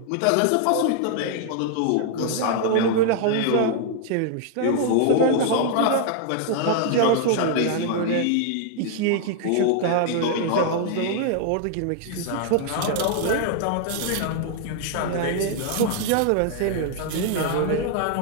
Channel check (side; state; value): both; different; correlation -0.01